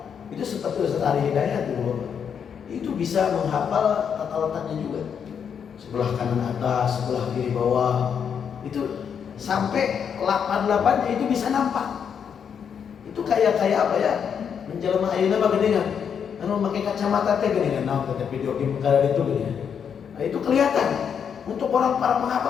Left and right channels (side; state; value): right; quieter; 7.4 dB